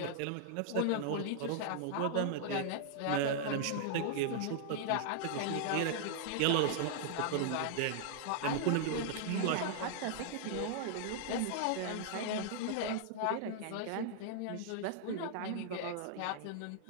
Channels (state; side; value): different; both; correlation -0.01